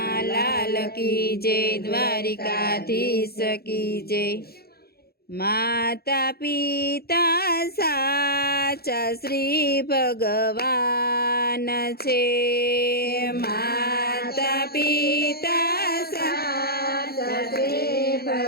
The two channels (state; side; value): late; right; 0.45 ms